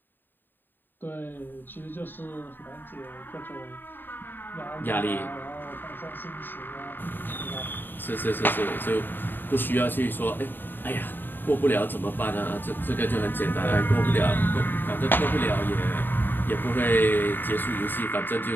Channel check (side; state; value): right; late; 0.093 ms